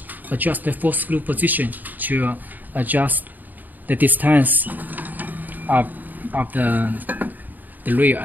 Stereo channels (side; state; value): left; late; 0.086 ms